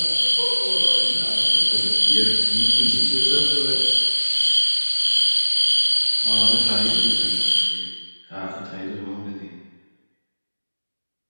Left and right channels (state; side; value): inverted; both; correlation -1.00